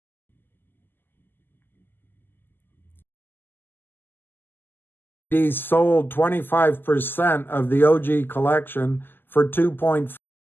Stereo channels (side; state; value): right; late; 0.095 ms